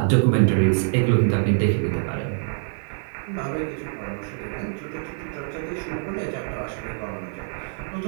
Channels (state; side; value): silent; left; 62 dB below the other